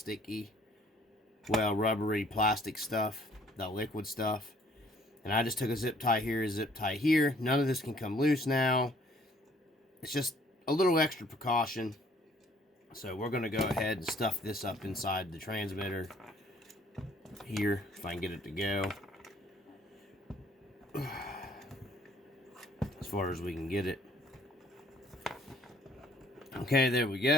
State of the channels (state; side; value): normal; both; correlation 0.60